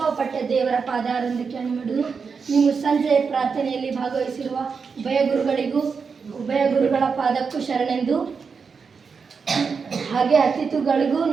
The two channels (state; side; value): quieter; left; 5.5 dB